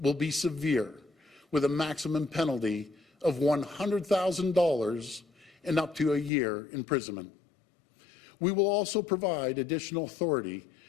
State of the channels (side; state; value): right; drops out; at 6.3 s